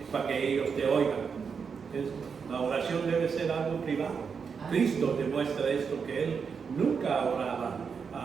para que ellos te oigan. La oración debe ser algo privado. Cristo demuestra esto, que Él nunca oraba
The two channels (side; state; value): left; quieter; 6.0 dB